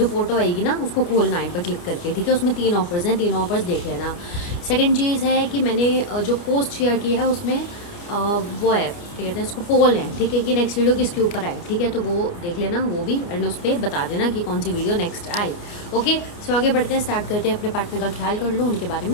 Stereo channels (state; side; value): late; right; 29 ms